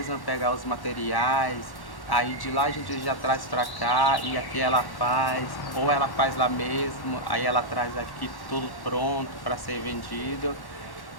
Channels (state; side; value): late; right; 1.1 ms